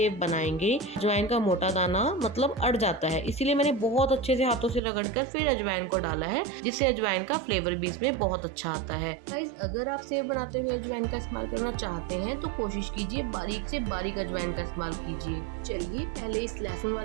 बनाएंगे अजवाइन का मोटा दाना मतलब अड़ जाता है, इसीलिए मैंने बहुत अच्छे से हाथों से रगड़कर फिर अजवाइन को डाला है, जिससे अजवाइन का फ्लेवर भी इसमें बहुत अच्छा आता है। गाइस, अगर आप सेव बनाते हुए अजवाइन का इस्तेमाल करना चाहते हैं तो कोशिश कीजिए बारीक से बारीक अजवाइन का इस्तेमाल कीजिए। चलिए पहले इस लहसुन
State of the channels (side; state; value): left; drops out; at 4.8 s